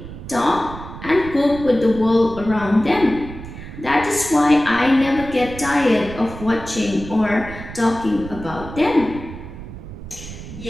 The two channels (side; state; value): right; noise; rumble, 12 dB below the sound